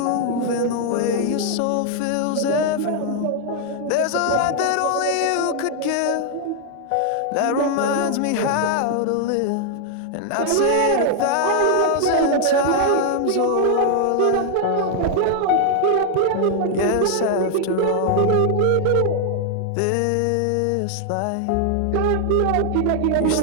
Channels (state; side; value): different; both; correlation 0.00